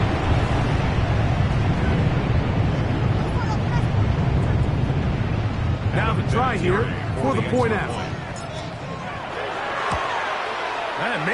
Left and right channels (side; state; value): both; identical; correlation 1.00